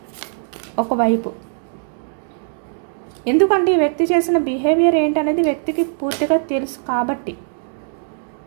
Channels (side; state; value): left; silent; digital silence